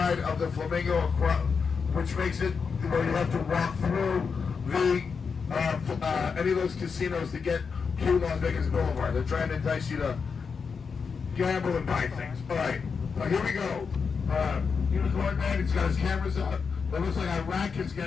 of the Flamingo, which makes it where you have to walk through the any of those casinos to get to Las Vegas Boulevard. They're trying to entice you to gamble and buy things. All right, here we go. Unicorn Man, he's got his cameras up. It looks like Iraq is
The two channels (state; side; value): quieter; right; 5.6 dB